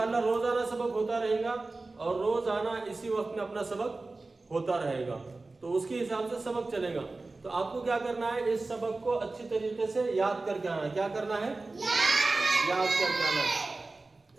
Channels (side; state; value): left; quieter; 3.4 dB